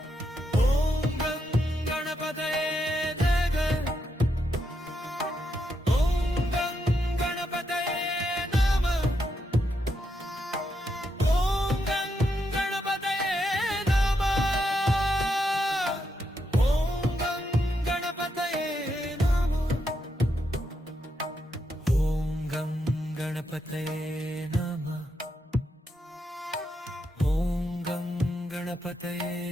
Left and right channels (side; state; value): both; normal; correlation 0.81